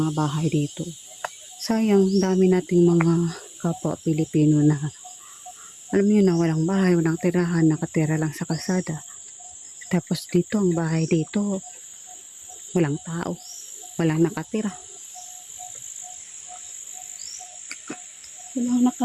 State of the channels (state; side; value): identical; both; correlation 1.00